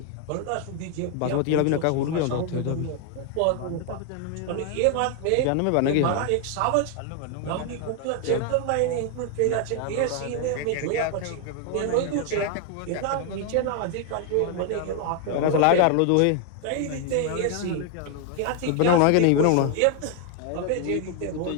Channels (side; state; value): both; different; correlation 0.00